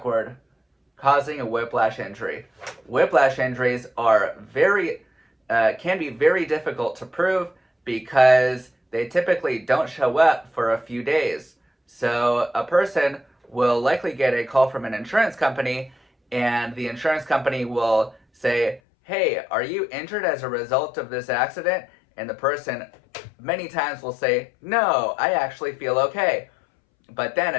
causing a whiplash injury. Whiplash injuries are can be very difficult to prove because they typically don't show up for a few days. So a person will likely get a call from an insurance company, and the insurance company will say, "Hey, are you injured as a result of this accident?" And the person many times will say, "No, I actually feel okay." But then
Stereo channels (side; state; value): right; drops out; at 18.8 s